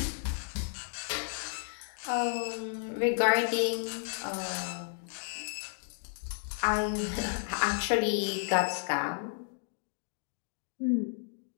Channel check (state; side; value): silent; right; digital silence